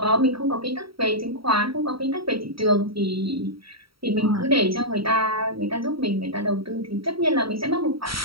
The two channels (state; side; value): late; left; 0.75 ms